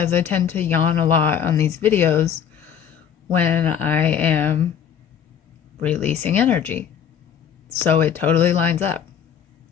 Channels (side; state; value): right; quieter; 8.3 dB